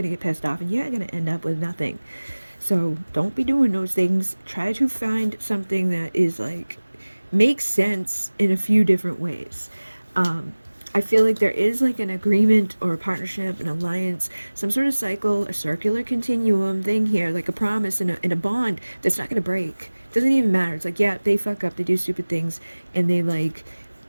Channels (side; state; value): both; inverted; correlation -1.00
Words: get pissed off, and you're gonna end up with nothing. So don't be doing those things. Try to find something that is like makes sense in a few different ways. I feel like there is like an agreement or a partnership, an alliance, some sort of cycle, a circular continuum thing here, like a promise and a bond that's not going to break. Doesn't even matter. It's like, yeah, they fuck up, they do stupid things, and they like